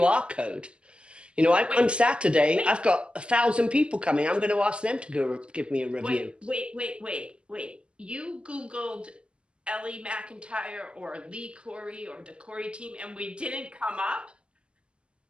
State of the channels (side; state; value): left; late; 0.053 ms